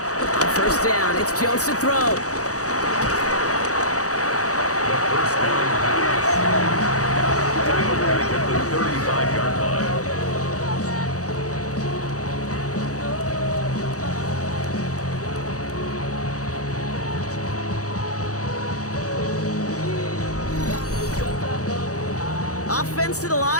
On first down, it's Jones to throw. The first down pass. Tackled back at the 35-yard line. Offense to the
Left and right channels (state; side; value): late; right; 0.66 ms